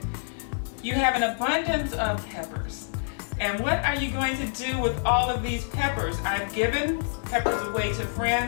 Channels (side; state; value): right; silent; digital silence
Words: You have an abundance of peppers, and what are you going to do with all of these peppers? I've given peppers away to